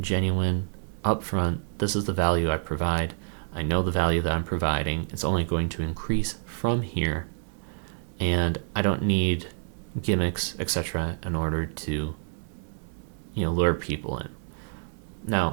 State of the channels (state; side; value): silent; left; digital silence